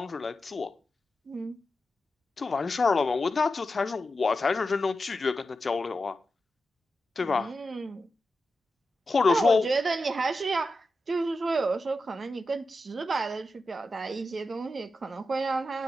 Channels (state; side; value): normal; both; correlation 0.90